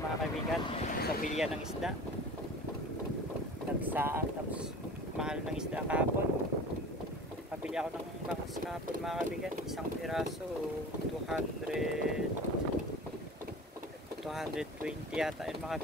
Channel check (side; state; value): both; normal; correlation 0.38